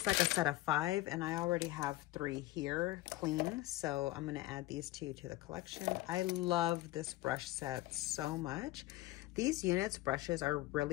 like a set of 5, and I already have 3 here clean. So I'm going to add these 2 to the collection. I love this brush set so much. These units brushes are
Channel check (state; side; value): quieter; right; 17.3 dB